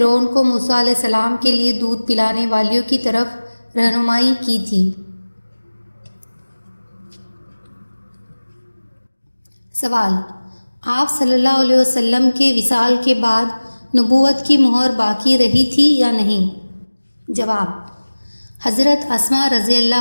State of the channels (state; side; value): inverted; both; correlation -1.00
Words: کو موسیٰ علیہ السلام کے لیے دودھ پلانے والیوں کی طرف رہنمائی کی تھی۔ سوال: آپ صلی اللہ علیہ وسلم کے وصال کے بعد نبوت کی مہر باقی رہی تھی یا نہیں؟ جواب: حضرت اسماء رضی